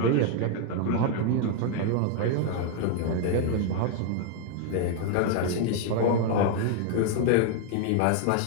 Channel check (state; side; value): different; both; correlation 0.00